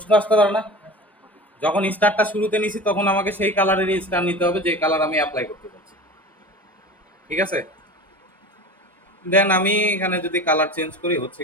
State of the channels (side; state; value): both; normal; correlation 0.34